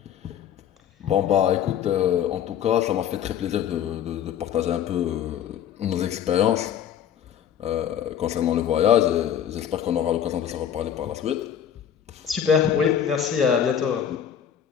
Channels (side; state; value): right; quieter; 9.2 dB